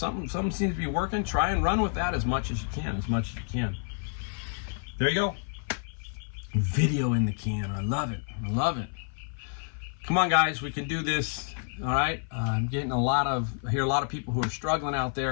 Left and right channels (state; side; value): silent; right; 55 dB below the other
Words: seems to be working, try and run with that as much as you can. There you go. Video in the can. I love it. Come on, guys. We can do this. All right. I'm getting I hear a lot of people who are struggling out